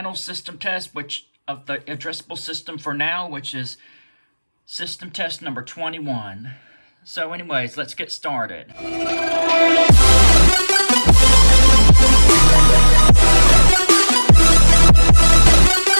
system test, which of the addressable system for now, which is system test number 21. So anyways, let's get started.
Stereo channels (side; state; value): both; inverted; correlation -1.00